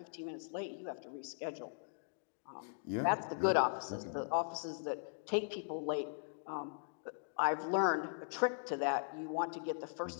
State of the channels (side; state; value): right; silent; digital silence